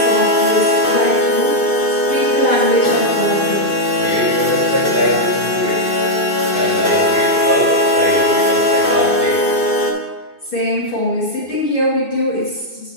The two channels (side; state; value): right; late; 2.6 ms